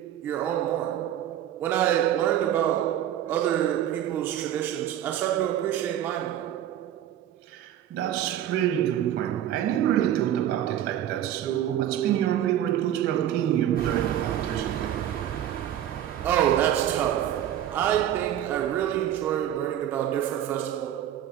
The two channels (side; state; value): left; quieter; 11.2 dB